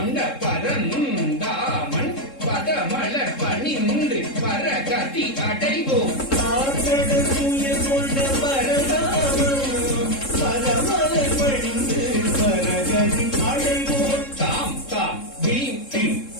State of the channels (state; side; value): late; right; 3.7 ms